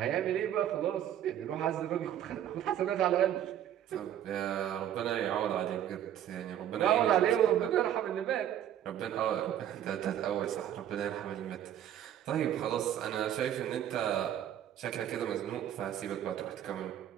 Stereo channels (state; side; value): quieter; left; 10.8 dB